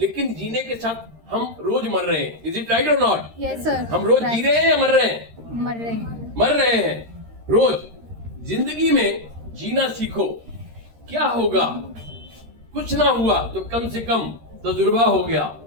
जीने के साथ हम रोज मर रहे हैं। इज इट राइट और नॉट? Yes sir. हम रोज जी रहे हैं या मर रहे हैं? मर रहे हैं। मर रहे हैं रोज। जिंदगी में जीना सीखो। क्या होगा? कुछ ना हुआ तो कम से कम तजुर्बा हो गया।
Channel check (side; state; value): left; late; 13 ms